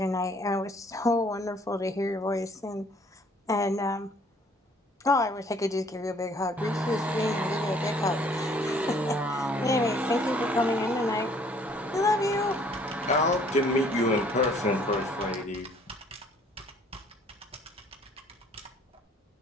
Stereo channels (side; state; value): both; normal; correlation 0.59